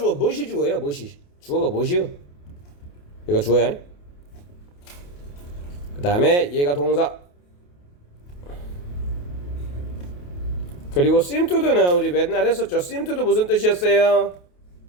무엇이 주어요? 주어가 무엇이요? 얘가 주어야. 그 다음에 얘가 동사. 그리고 seem to do는 우리 맨날 했었죠. seem to do 무슨 뜻이었어요?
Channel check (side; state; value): right; late; 28 ms